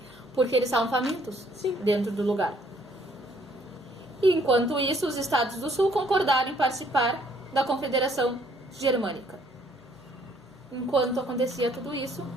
porque eles estavam famintos dentro do lugar. E enquanto isso, os estados do sul concordaram em participar da Confederação Germânica. Enquanto acontecia tudo isso,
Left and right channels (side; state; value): both; normal; correlation 0.64